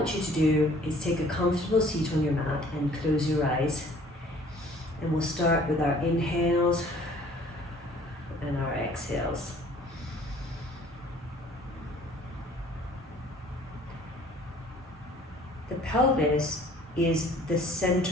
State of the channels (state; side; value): normal; both; correlation 0.54